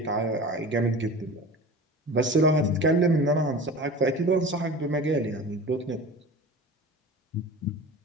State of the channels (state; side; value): normal; both; correlation 0.36